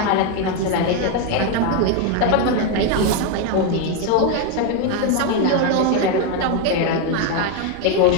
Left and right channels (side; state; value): both; different; correlation 0.02